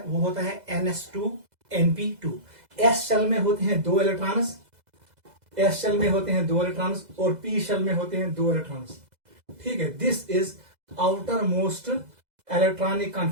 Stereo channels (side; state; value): left; late; 2.0 ms